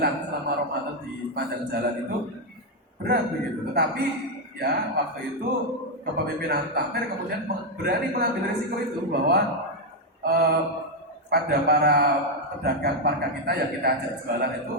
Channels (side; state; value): both; normal; correlation 0.02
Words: selama Ramadan di panjang jalan itu berat begitu. Tetapi ya waktu itu kepemimpinan takmir kemudian berani mengambil risiko itu bahwa pada para pedagang parka kita yang kita ajak jualan itu